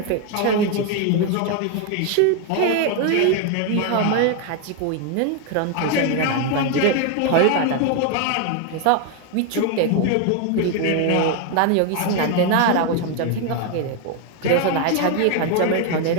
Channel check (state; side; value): different; both; correlation 0.01